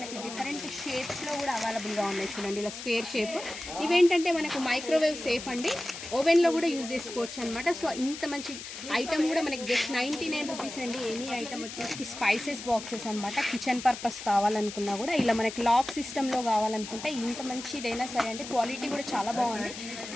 డిఫరెంట్ షేప్స్లో కూడా అవైలబుల్గా ఉన్నాయి చూడండి. ఇలా స్క్వేర్ షేప్. ఇవేంటంటే మనకు మైక్రోవేవ్ సేఫ్ అండి, ఓవెన్లో కూడా యూజ్ చేసుకోవచ్చు అనమాట. సో ఇంత మంచి ఐటమ్ కూడా మనకి జస్ట్ 99 రూపీస్ అండి. ఎనీ ఐటమ్ వచ్చేసి స్పైసెస్ బాక్సెస్ అనమాట. కిచెన్ పర్పస్ కావాలనుకున్నా కూడా ఇలా మనకి లాక్ సిస్టంలో కావాలనుకుంటే ఇంత మంచిదైనా సరే అండి. క్వాలిటీ కూడా చాలా బాగుంది.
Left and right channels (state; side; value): noise; left; hiss, 10 dB below the sound